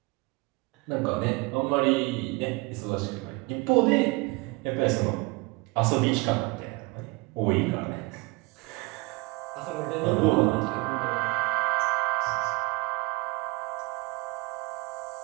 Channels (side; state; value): left; quieter; 25.4 dB